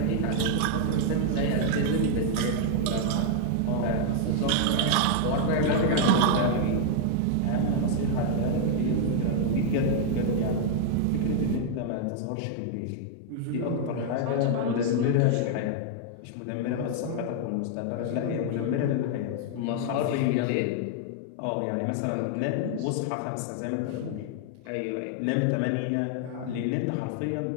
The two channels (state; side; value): different; both; correlation 0.00